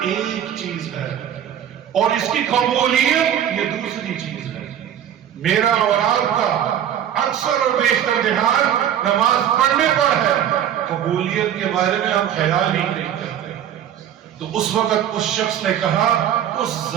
ایک چیز ہے اور اس کی قبولیت یہ دوسری چیز ہے۔ میرا اور آپ کا اکثر اور بیشتر دھیان نماز پڑھنے پر ہے، قبولیت کے بارے میں ہم خیال ہی نہیں کرتے۔ تو اس وقت اس شخص نے کہا، اس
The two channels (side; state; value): left; quieter; 10.0 dB